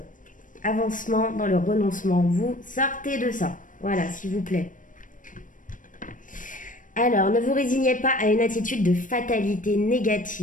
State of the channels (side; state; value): right; late; 0.38 ms